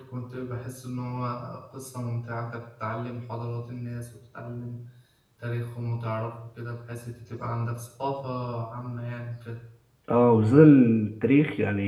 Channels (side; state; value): both; identical; correlation 1.00